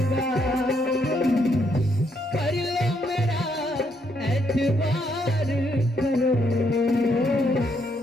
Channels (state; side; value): normal; both; correlation 0.74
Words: कर लो मेरा एतबार करो,